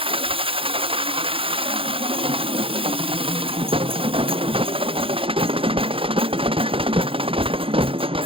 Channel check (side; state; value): left; late; 0.26 ms